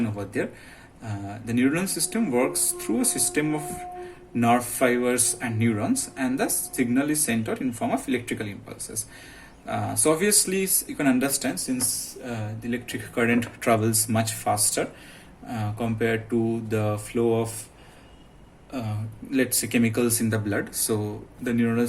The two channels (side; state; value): both; identical; correlation 1.00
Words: over there. The neural system works through a system of nerve fibers and neurons, and the signal is sent out in form of electrical impulses. So obviously you can understand, since the electric current travels much faster compared to the flow of let's say chemicals in the blood, so the neural